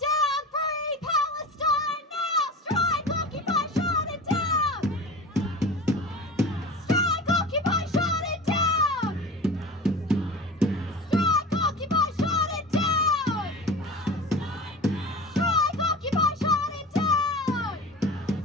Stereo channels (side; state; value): both; normal; correlation 0.34